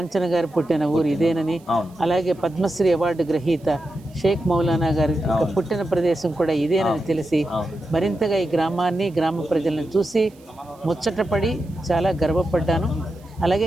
గారు పుట్టిన ఊరు ఇదేనని, అలాగే పద్మశ్రీ అవార్డు గ్రహీత షేక్ మౌలానా గారి పుట్టిన ప్రదేశం కూడా ఇదేనని తెలిసి మరింతగా ఈ గ్రామాన్ని, గ్రామ ప్రజలను చూసి ముచ్చటపడి చాలా గర్వపడ్డాను. అలాగే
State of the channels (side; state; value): right; noise; hiss, 30 dB below the sound